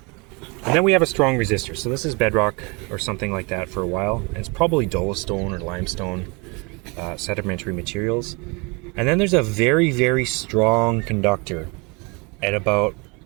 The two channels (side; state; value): left; quieter; 29.4 dB